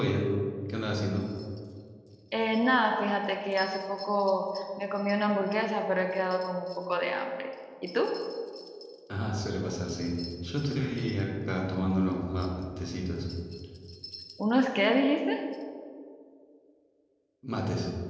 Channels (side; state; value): both; identical; correlation 1.00